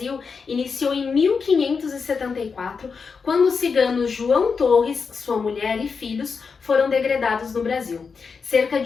iniciou em 1574, quando o cigano João Torres, sua mulher e filhos foram degredados no Brasil. Cerca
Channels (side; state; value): right; quieter; 5.4 dB